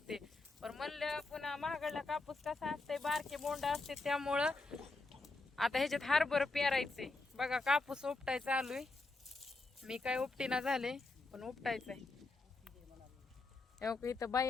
पण म्हणलं पुन्हा महागडला कापूस कसा असते, बारके बोंड असते, त्यामुळं आता ह्याच्यात हरभर पेरायचे. बघा कापूस उपटाय चालू आहे. मी काय उपटीना झाले, पण उपटायचंय. इथं बाई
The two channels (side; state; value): right; quieter; 3.3 dB